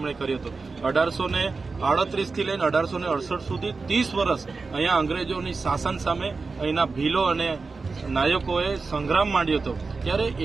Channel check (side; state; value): left; quieter; 4.2 dB